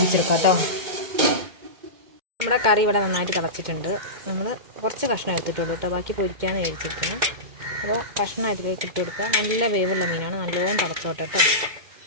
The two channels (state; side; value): late; left; 2.2 ms